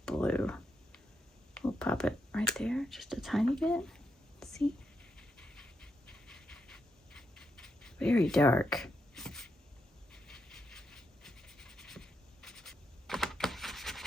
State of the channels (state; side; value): normal; both; correlation 0.82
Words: blue. We'll pop it right there, just a tiny bit. See? Very dark.